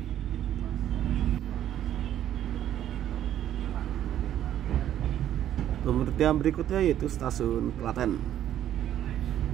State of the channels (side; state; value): left; quieter; 11.3 dB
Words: Pemberhentian berikutnya yaitu stasiun Klaten.